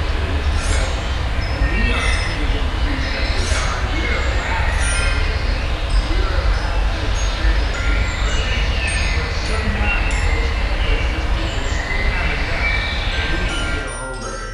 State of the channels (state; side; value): identical; both; correlation 1.00